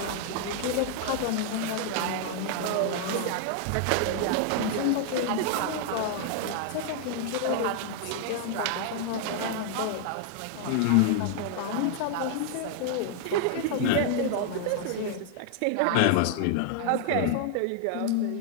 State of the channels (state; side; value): different; both; correlation 0.00